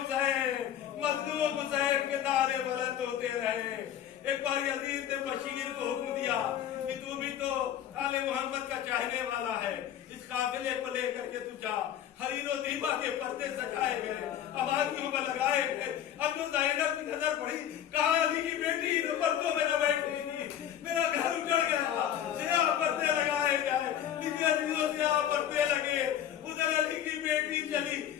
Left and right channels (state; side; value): quieter; right; 10.4 dB